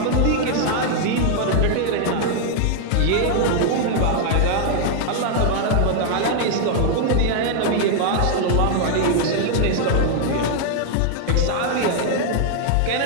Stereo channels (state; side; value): different; both; correlation 0.00